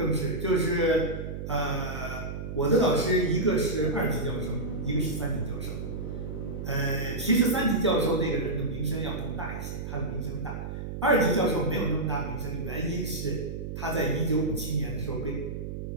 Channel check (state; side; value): noise; right; hum, 6 dB below the sound